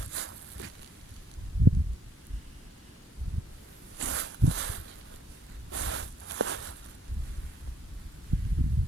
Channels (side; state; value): both; normal; correlation 0.67